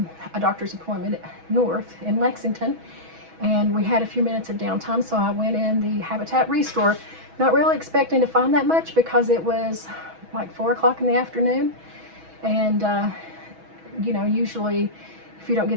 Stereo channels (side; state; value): left; late; 6.2 ms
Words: a doctor's appointment north in Lexington, and we had a few minutes of downtime, so I went in the Habitat Restore, not really expecting to find that much because it was like 4 o'clock in the afternoon, and you know, usually if you don't